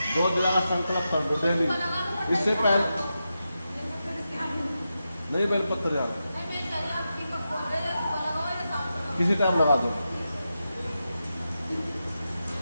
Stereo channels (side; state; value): both; inverted; correlation -0.89